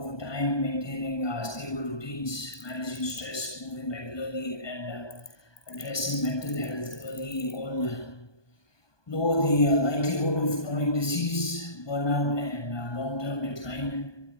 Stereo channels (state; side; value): late; right; 1.2 ms